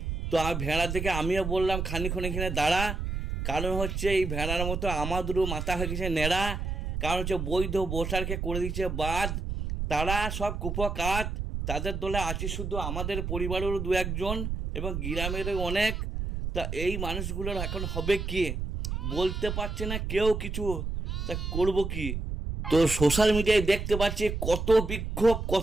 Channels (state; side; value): noise; right; rumble, 3 dB below the sound